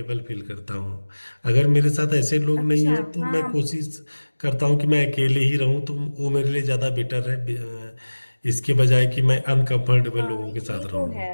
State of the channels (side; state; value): both; inverted; correlation -1.00